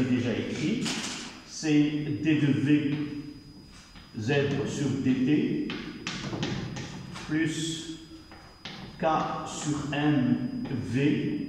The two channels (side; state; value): both; identical; correlation 1.00